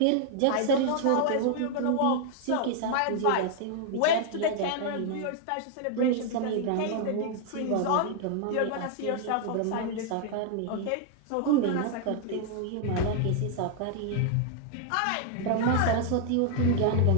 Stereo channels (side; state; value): both; different; correlation 0.00